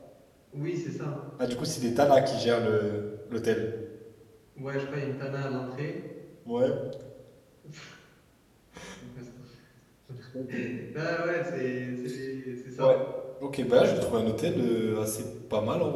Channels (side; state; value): both; identical; correlation 1.00